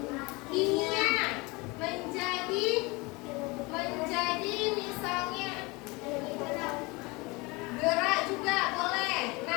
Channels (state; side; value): quieter; right; 25.5 dB